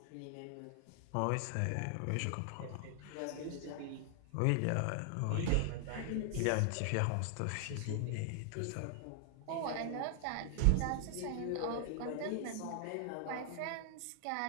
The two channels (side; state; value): both; different; correlation 0.00